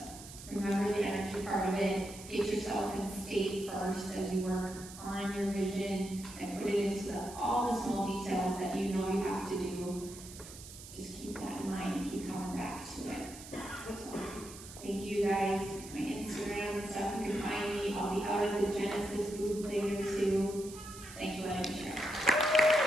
remember the energy part of it. Get yourself in state first as you work on your vision and put it into all the small details that you know you have to do. Just keep that in mind and keep coming back to it. So, thank you guys. My Instagram and stuff, you can find me. I'll be out at the Genesis booth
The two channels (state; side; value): noise; right; hiss, 15 dB below the sound